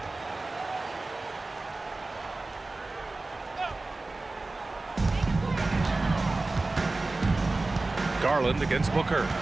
Garland against Booker.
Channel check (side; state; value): left; quieter; 3.2 dB